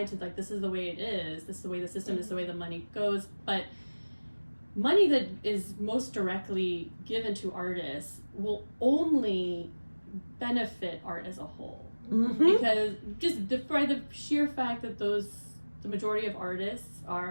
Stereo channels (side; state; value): both; inverted; correlation -1.00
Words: like, this is the way it is, this is the way the system, this is the way the money goes. But money that is most directly given to artists will only benefit art as a whole, because just by the sheer fact that the majority of artists